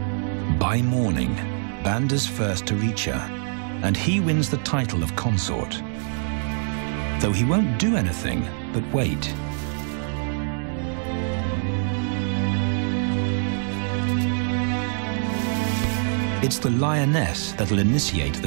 By morning, Banda's first to reach her, and he wins the title of consort. Though he won't do anything but wait. It's the lioness that'll initiate the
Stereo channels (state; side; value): silent; left; 62 dB below the other